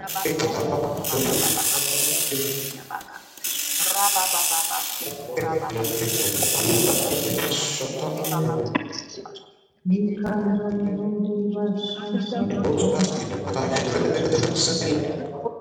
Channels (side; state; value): both; identical; correlation 1.00